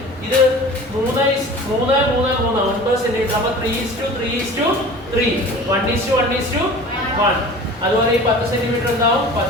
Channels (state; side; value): normal; both; correlation 0.40